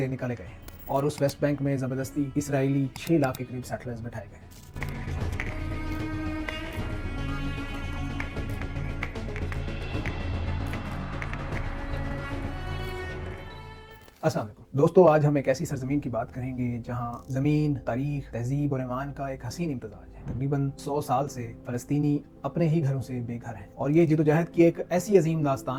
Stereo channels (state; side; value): identical; both; correlation 1.00